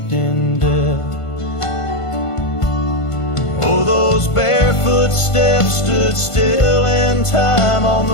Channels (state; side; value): late; right; 1.5 ms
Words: in death. Oh, those barefoot steps stood still in time on